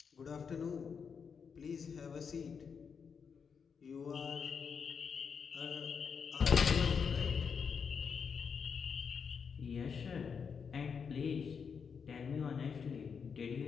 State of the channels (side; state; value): right; quieter; 6.3 dB